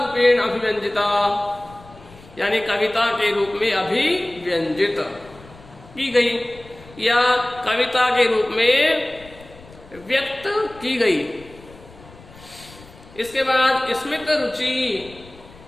अभिव्यंजिता, यानी कविता के रूप में अभिव्यंजित की गई या कविता के रूप में व्यक्त की गई। इसके बाद स्मित रुचि,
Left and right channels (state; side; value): noise; left; rumble, 22 dB below the sound